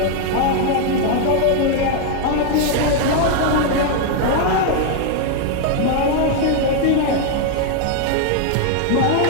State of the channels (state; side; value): different; both; correlation 0.00